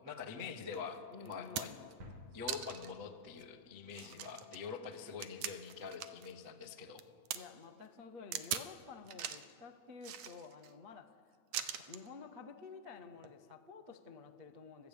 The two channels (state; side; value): late; left; 9.2 ms